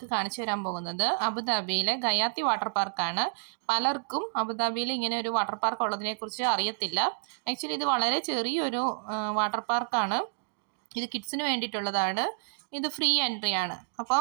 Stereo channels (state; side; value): silent; left; digital silence